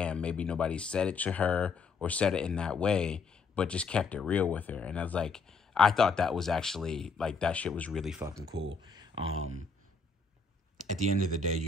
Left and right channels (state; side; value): quieter; right; 4.5 dB